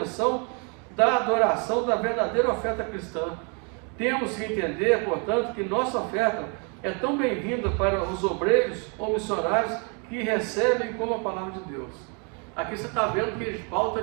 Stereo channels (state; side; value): quieter; left; 36.5 dB